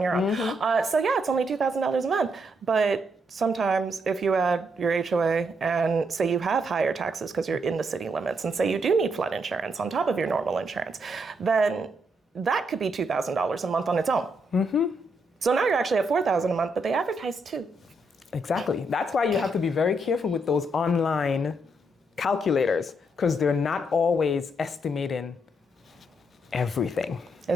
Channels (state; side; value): normal; both; correlation 0.77